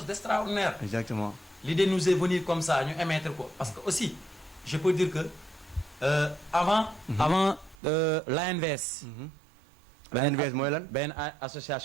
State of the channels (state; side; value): drops out; left; at 7.8 s